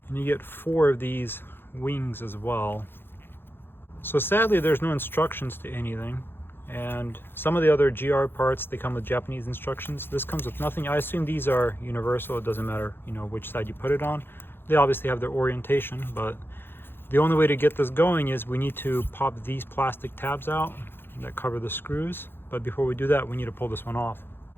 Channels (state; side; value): late; right; 0.10 ms